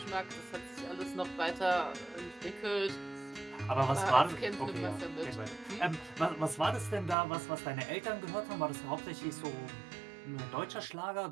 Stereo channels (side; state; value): left; drops out; at 7.2 s